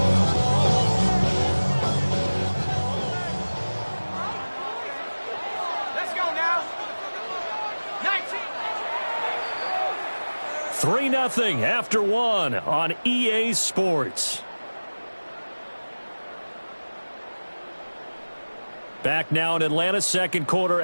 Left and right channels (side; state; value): both; inverted; correlation -1.00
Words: Nothing after one on EA Sports. Back now in Atlanta's second quarter